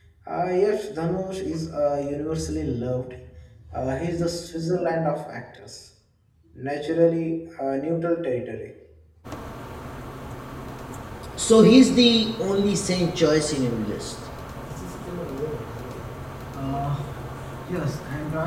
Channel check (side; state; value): both; identical; correlation 1.00